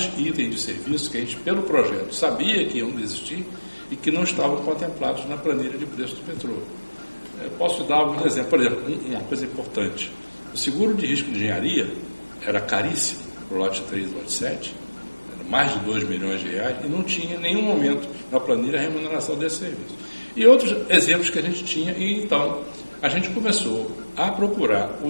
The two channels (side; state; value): both; inverted; correlation -1.00